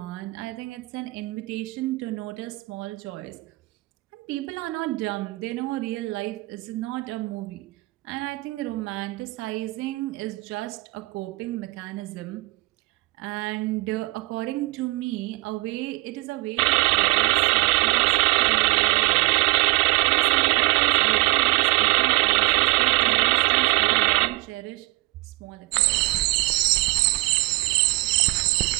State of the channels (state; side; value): quieter; left; 22.0 dB